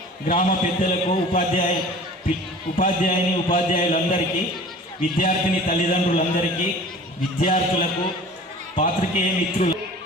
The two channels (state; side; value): normal; both; correlation 0.43